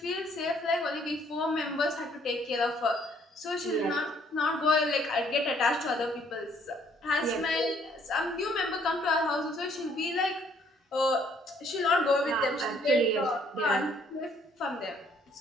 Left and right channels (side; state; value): both; normal; correlation 0.64